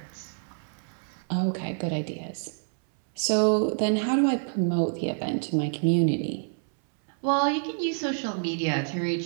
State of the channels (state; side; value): silent; left; 60 dB below the other